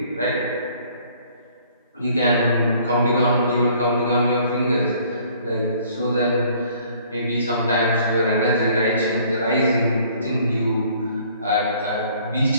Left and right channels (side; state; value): both; inverted; correlation -0.58